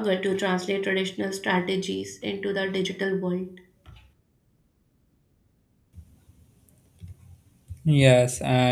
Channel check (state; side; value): identical; both; correlation 1.00